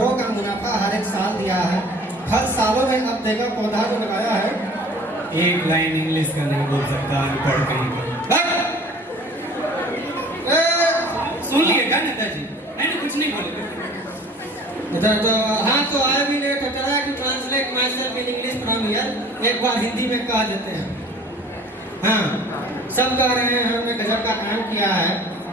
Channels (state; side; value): normal; both; correlation 0.48